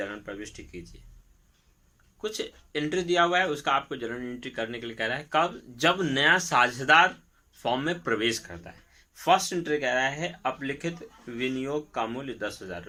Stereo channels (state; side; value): identical; both; correlation 1.00